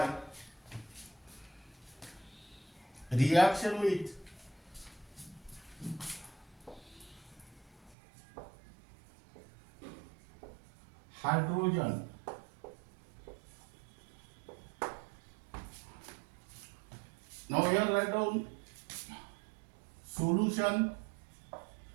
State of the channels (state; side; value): drops out; left; at 8.0 s